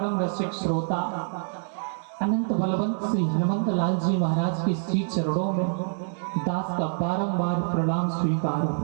रसिक श्रोता अनंत बलवंत श्री हनुमंत लाल जी महाराज के श्री चरणों में दास का बारंबार प्रणाम स्वीकार हो।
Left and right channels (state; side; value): silent; left; digital silence